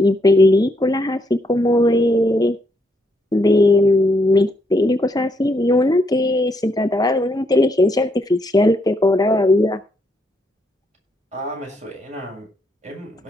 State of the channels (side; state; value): both; normal; correlation 0.75